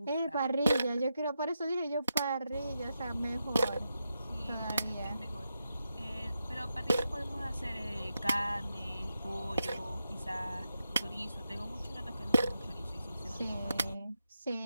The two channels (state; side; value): inverted; both; correlation -0.87